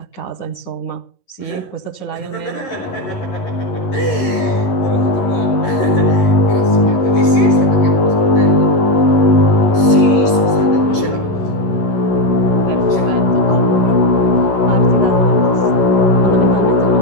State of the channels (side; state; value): right; late; 11 ms